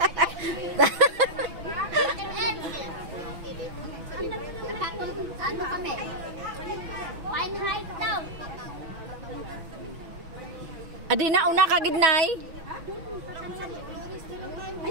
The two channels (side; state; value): left; late; 6.0 ms